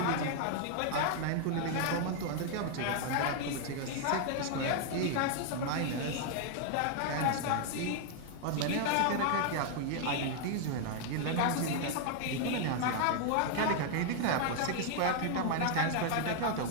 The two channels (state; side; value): different; both; correlation 0.00